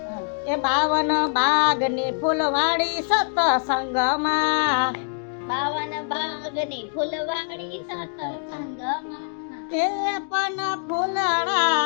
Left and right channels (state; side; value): silent; right; digital silence